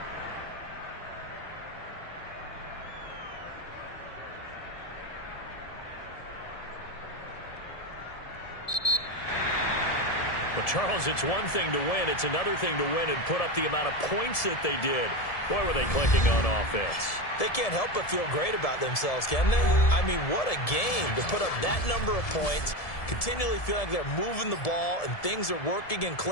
Well, Charles, it's one thing to win. It's another thing to win and put up the amount of points that they did. Boy, were they clicking on offense. They can't help but feel great about themselves, can they? I mean, what a game to put up that number of points, continually feeling like they're moving the ball and things are working and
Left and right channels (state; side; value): late; right; 1.7 ms